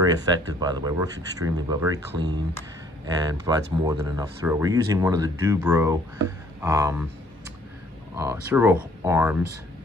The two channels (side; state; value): both; normal; correlation 0.60